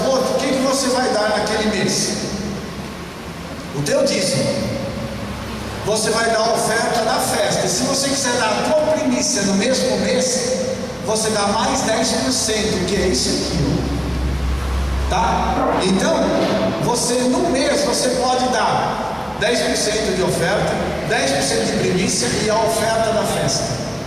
o que você vai dar naquele mês? O teu dízimo. Você vai dar a oferta da festa. E se você quiser dar a tua primícia no mesmo mês, você dá mais 10%, que é isso aqui. Tá? Então, no mês você pode dar 10% de oferta, 10% de primícia e a oferta da festa,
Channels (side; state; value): both; identical; correlation 1.00